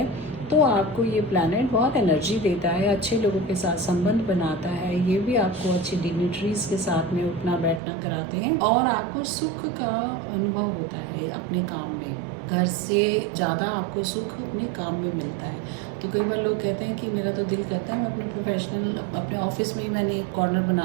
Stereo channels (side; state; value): left; drops out; at 7.8 s